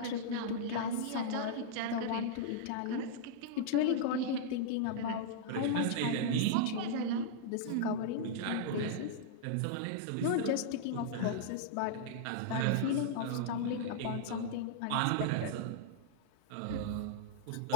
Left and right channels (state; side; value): different; both; correlation -0.02